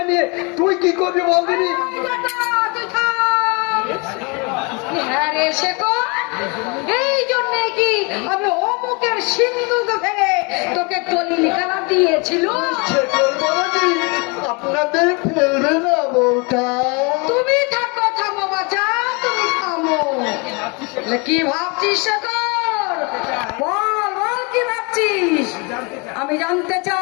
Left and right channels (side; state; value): right; quieter; 30.5 dB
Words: নিয়ে তুই কি করবি বলদিনি? হ্যাঁ রে শেখর, এই জন্যে কি আমি অমুকের সিন্ধুকে ভেঙে তোকে দলিল কালা দিয়েছিল? শেখর বাবাজি, আপনাদের ফেলবে না বউটা। তুমি থাকো, থামো বাচ্চা, তুমি থামো। কি ভাবছিস শেখর? বল বল, কি ভাবছিস? আমি জানতে